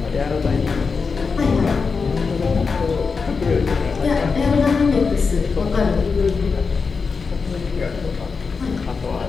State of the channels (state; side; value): quieter; right; 5.0 dB